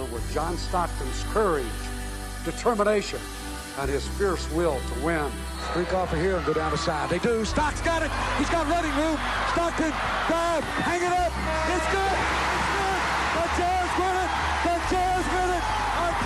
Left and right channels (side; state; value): both; identical; correlation 1.00